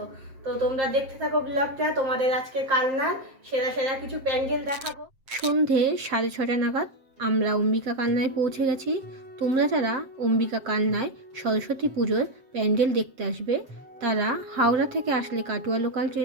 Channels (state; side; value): late; left; 7.6 ms